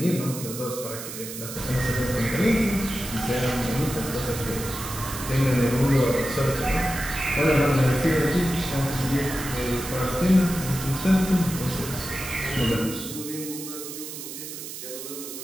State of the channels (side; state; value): right; noise; hiss, 9 dB below the sound